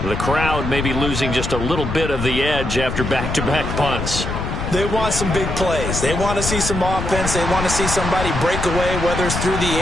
The crowd may be losing just a little bit of the edge after back-to-back punts. They want some big plays. They want to see some offense. They want to see somebody break away, whether it's through the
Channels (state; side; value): noise; left; rumble, 4 dB below the sound